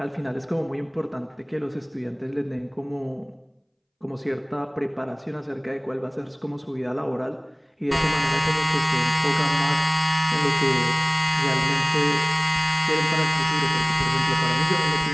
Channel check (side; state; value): both; identical; correlation 1.00